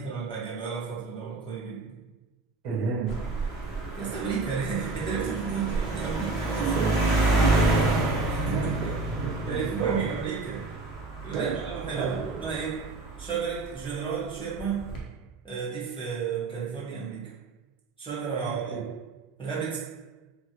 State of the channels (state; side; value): quieter; left; 3.4 dB